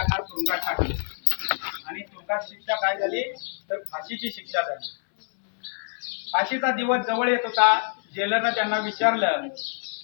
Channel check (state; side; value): silent; right; digital silence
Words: तुरुंगात टाकले आणि तुरुंगात शिक्षा काय झाली तर फाशीची शिक्षा झाली. फाशीचा दिवस जवळ येत होता. जेलरनं त्यांना विचारलं